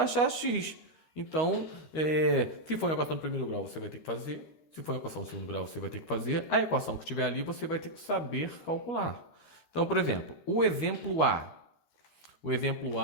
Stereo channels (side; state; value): right; late; 13 ms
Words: achar x. Então, se for uma equação do primeiro grau, você vai ter que fazer. Se for uma equação do segundo grau, você vai ter que fazer. A equação que tiver ali, você vai ter que saber calcular. Então, por exemplo, o exemplo A. O exemplo